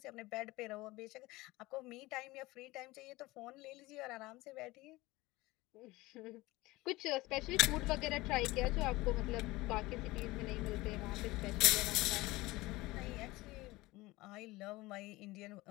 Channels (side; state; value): right; quieter; 20.3 dB